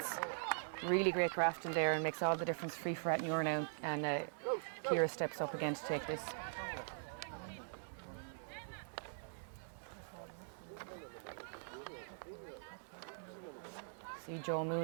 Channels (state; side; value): silent; left; digital silence